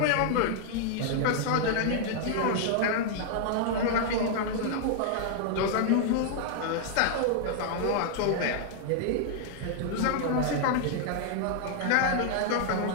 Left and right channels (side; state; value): both; different; correlation 0.00